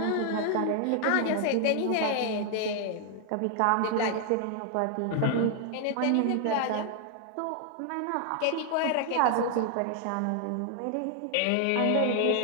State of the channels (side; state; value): both; different; correlation 0.00